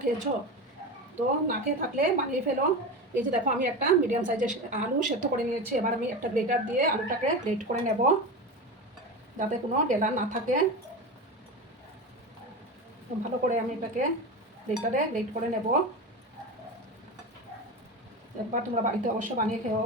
খেয়েছো? তো না খেয়ে থাকলে বানিয়ে ফেলো। এই যে দেখো, আমি একটা মিডিয়াম সাইজের আলু সেদ্ধ করে নিয়েছি। এবার আমি একটা গ্রেটার দিয়ে আলুটাকে গ্রেট করে নেব, যাতে কোনো ডেলা না থাকে। ভালো করে আমি এটাকে গ্রেটারে গ্রেট করে নেব। একবার তোমরা বাড়িতে অবশ্য বানিয়ে খেও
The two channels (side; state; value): both; normal; correlation 0.24